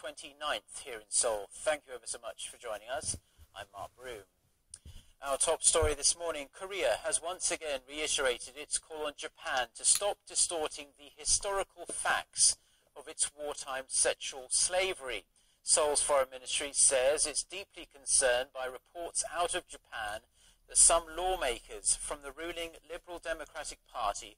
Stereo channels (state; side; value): identical; both; correlation 1.00